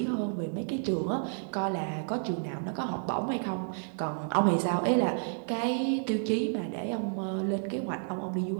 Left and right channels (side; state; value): left; silent; digital silence